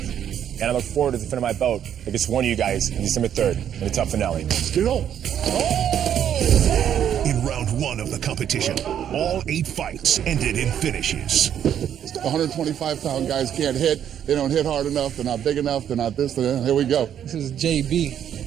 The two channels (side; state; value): left; quieter; 9.6 dB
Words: And I look forward to defending my belt against one of you guys on December 3rd in the tough finale. Let's get on. In round one of the competition, all 8 fights ended in finishes. 125-pound guys can't hit. They don't hit hard enough. They're not big enough. They're not this. Here we go. This is JB.